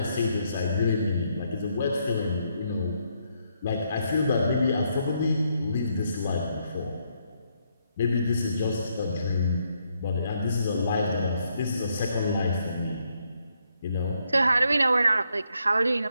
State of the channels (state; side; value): inverted; both; correlation -0.76